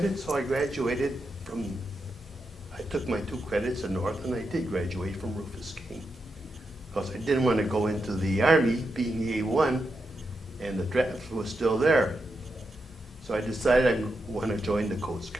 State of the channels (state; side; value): normal; both; correlation 0.85